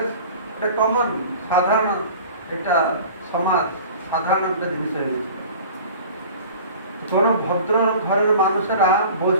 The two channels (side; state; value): both; inverted; correlation -0.42